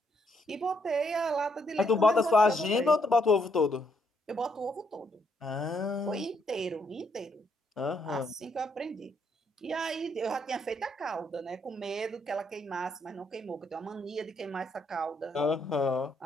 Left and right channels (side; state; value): both; normal; correlation 0.74